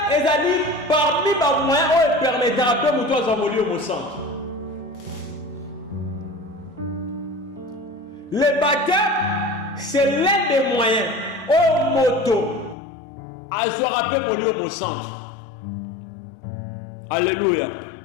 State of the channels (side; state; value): right; drops out; at 12.8 s